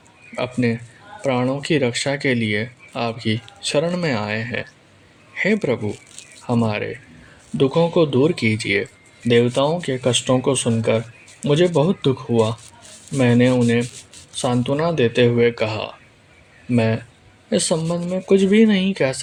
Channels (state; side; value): identical; both; correlation 1.00